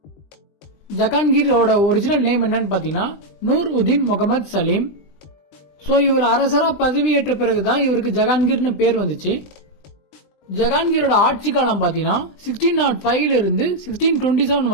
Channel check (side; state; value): right; late; 20 ms